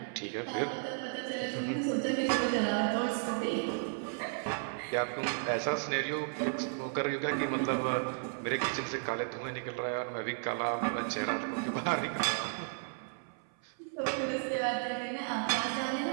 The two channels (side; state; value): left; silent; 55 dB below the other